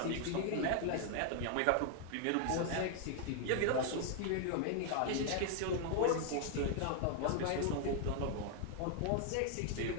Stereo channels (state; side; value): different; both; correlation 0.00